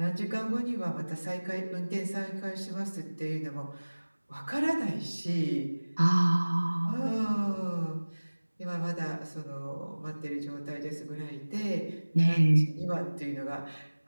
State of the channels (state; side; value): inverted; both; correlation -1.00